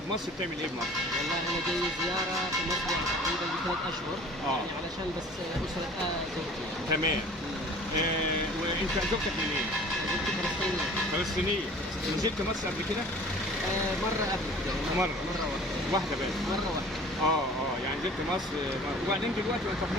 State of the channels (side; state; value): both; normal; correlation 0.46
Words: بتعمل ايه بمصر؟ والله انا جاي زياره في مصر يعني تقريبا ب3 اشهر. يعني علشان بس اسره زوجتي. تمام. وانت زوجتك منين؟ زوجتي فلسطينيه. فلسطينيه. نزلت مصر قبل كده؟ مره قبل كده. مره واحده بس. مره واحده. يعني نزلت مصر وبعدين دلوقتي انت في